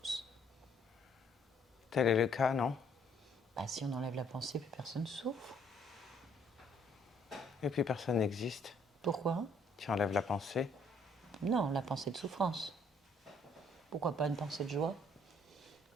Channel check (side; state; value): both; normal; correlation 0.65